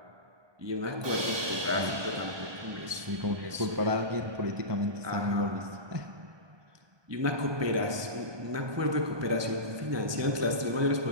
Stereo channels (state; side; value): late; left; 1.2 ms